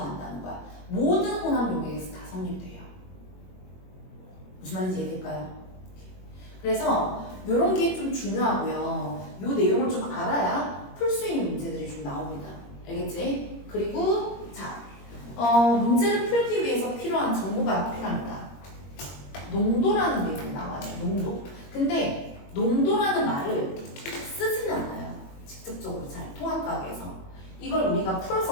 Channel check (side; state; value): right; late; 21 ms